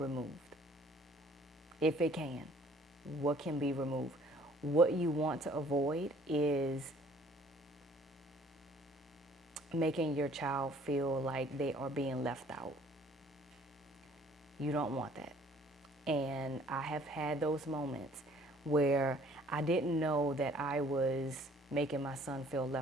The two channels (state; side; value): normal; both; correlation 0.57